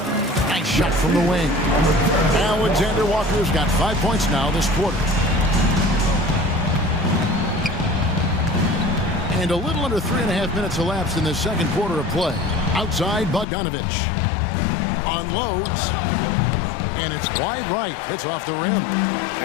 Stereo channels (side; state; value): right; drops out; at 13.5 s